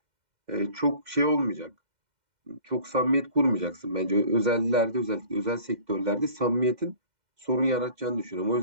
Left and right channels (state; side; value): late; left; 2.1 ms